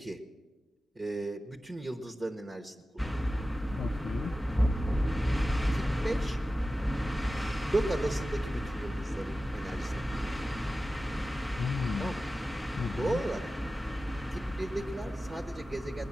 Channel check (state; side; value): normal; both; correlation 0.95